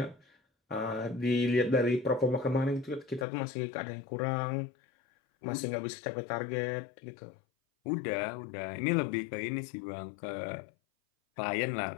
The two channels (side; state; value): right; drops out; at 3.2 s